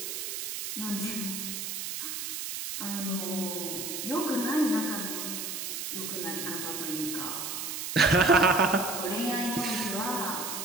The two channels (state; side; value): noise; right; hiss, 5 dB below the sound